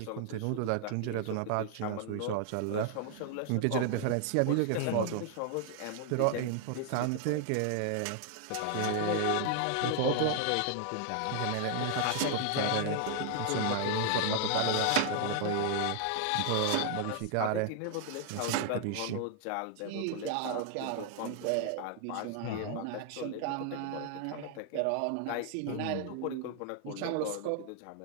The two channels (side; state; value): both; different; correlation 0.00